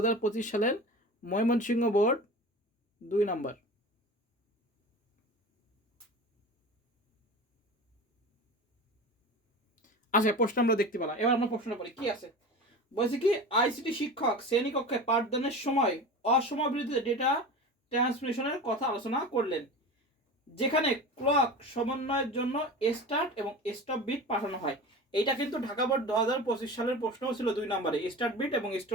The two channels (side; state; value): both; normal; correlation 0.32